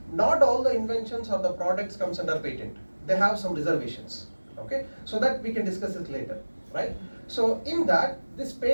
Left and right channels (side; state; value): both; inverted; correlation -1.00